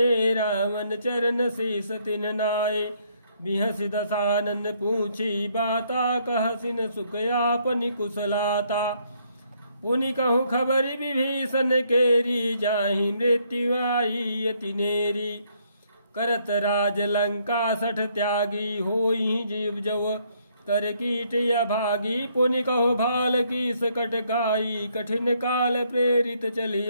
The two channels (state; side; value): inverted; both; correlation -0.70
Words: रावण चरण शीस तिन नाए। बिहस दसानन पूछी बाता, कहसिन सुख आपनि कुशलाता। पुनि कहूँ खबर विभीषण केरी, जाहि मृत्यु आई अति नेरी। करत राज लंका सठ त्यागी, होई जीव जव कर कीट या भागी। पुनि कहो भाल की सकट गाई, कठिन काल प्रेरित चली